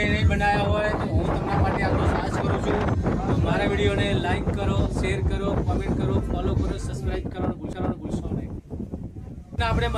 નહીં બનાવ્યા હોય તો હું તમારા માટે આટલો સાહસ કરું છું. તો મારા વિડીયોને લાઈક કરો, શેર કરો, કમેન્ટ કરો, ફોલો કરો, સબસ્ક્રાઇબ કરવાનું ભૂલશો નહીં. આપણે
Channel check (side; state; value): both; identical; correlation 1.00